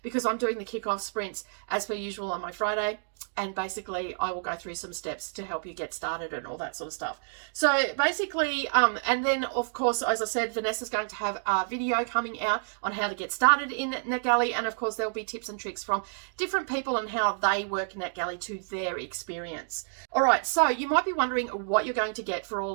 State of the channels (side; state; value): left; silent; digital silence